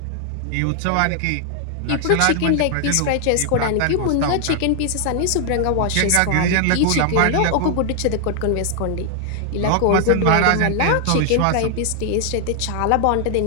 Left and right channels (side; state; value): both; different; correlation 0.00